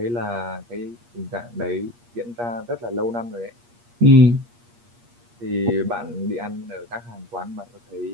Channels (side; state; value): left; late; 8.5 ms